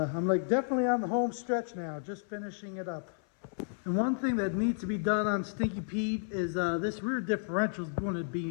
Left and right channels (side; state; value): right; silent; 56 dB below the other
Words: like definitely on the home stretch now, just finishing it up. And one thing that needs to be done on Stinky Pete is this rear differential is going to